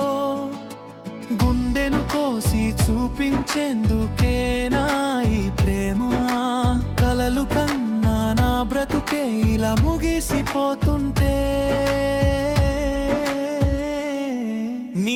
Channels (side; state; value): both; identical; correlation 1.00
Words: గుండెను కోసి చూపించేందుకేనా ఈ ప్రేమ, కలలు కన్నా నా బ్రతుకే ఇలా ముగిసిపోతుంటే.